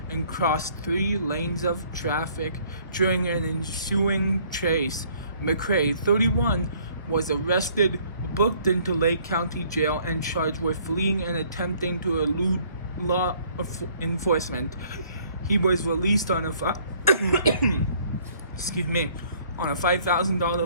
and crossed 3 lanes of traffic during an ensuing chase. McCray, 31, was arrested, booked into Lake County Jail, and charged with fleeing and attempting to elude law enforcement. He was released on a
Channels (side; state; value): both; inverted; correlation -0.60